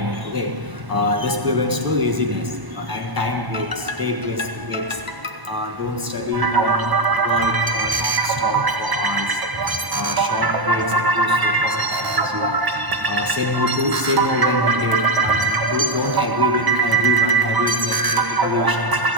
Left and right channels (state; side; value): late; left; 1.0 ms